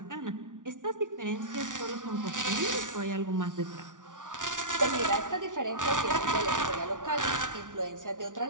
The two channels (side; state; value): left; late; 0.87 ms